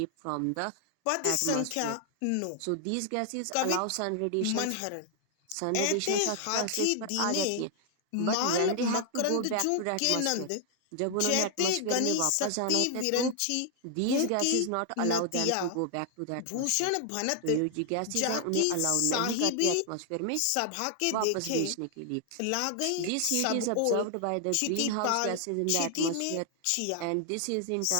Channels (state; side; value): different; both; correlation 0.00